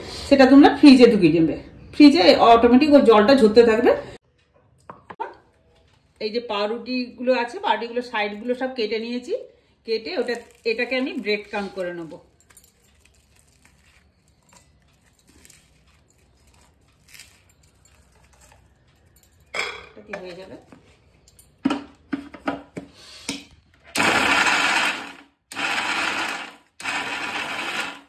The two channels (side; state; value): both; identical; correlation 1.00